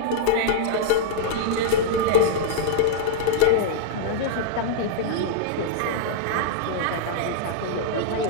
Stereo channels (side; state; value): both; different; correlation -0.01